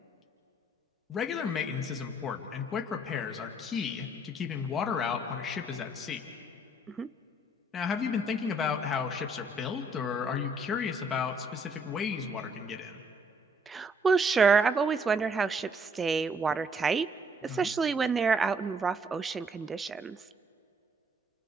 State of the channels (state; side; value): normal; both; correlation 0.66